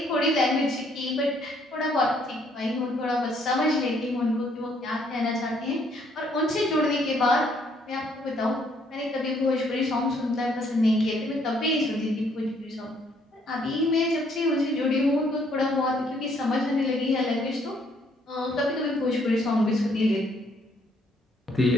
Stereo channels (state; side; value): normal; both; correlation 0.67